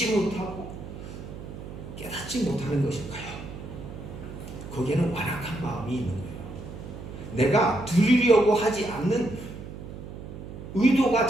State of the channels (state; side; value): noise; right; hum, 11 dB below the sound